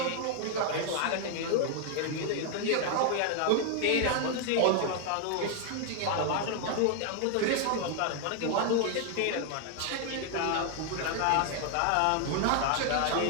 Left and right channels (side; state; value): both; different; correlation 0.00